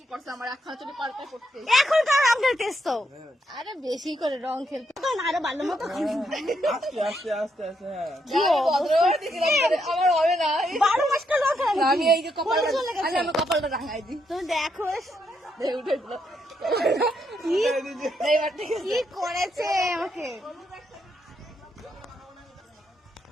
করছে, আমার একখানা চটি পাল্টা করতে। এখন কার রং খেলতে এসছো? আরে বেশি করে রং খেলতে, আরে ভালো মতো আস্তে আস্তে আস্তে আস্তে। হ্যাঁ, কি ভদ্রবার দিকে রং করে, আমার হবে না। 12 মাস কার রং খেলা? আমি এই যে কপালটা, আমি কপালটা রাঙাই দিই। তুমি দেখো উঠে দিল। কি করেছে আমাকে।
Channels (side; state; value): both; normal; correlation 0.78